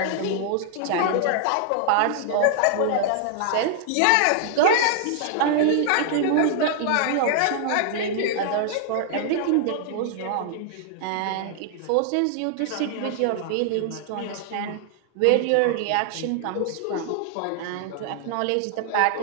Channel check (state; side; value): different; both; correlation 0.00